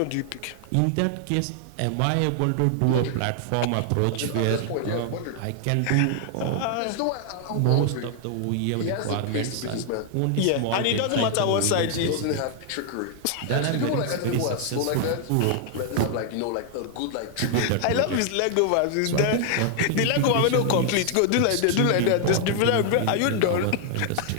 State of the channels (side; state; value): both; different; correlation 0.00